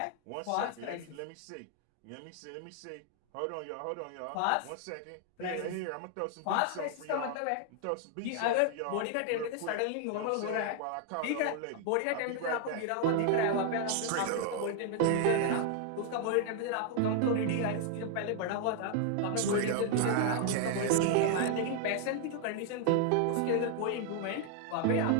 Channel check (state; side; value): different; both; correlation 0.00